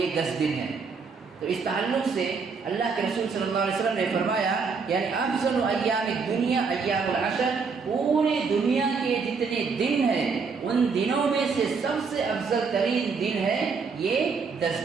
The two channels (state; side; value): quieter; left; 5.1 dB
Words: 10 دن ہے۔ تو اس تعلق سے اللہ کے رسول صلی اللہ علیہ وسلم نے فرمایا یعنی افضل ایام الدنیا ایام العشر، پوری دنیا کے جتنے دن ہیں ان دنوں میں سے سب سے افضل ترین دن ہے یہ